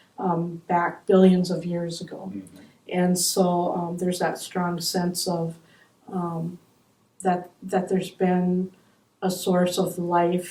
back billions of years ago. And so there's that strong sense of that there's been a source of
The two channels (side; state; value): both; identical; correlation 1.00